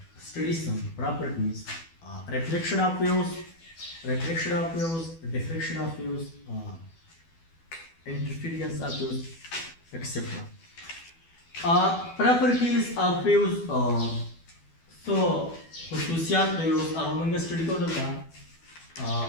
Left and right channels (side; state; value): right; late; 12 ms